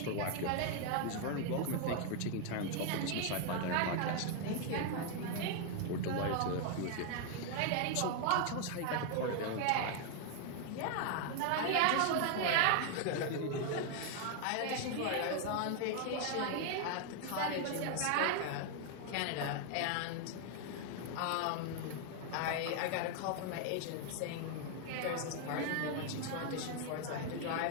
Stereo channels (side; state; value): both; different; correlation 0.00